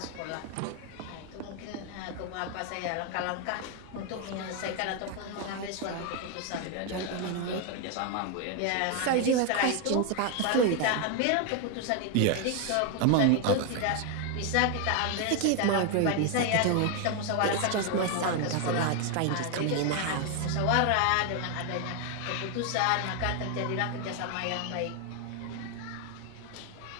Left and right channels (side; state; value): both; different; correlation 0.01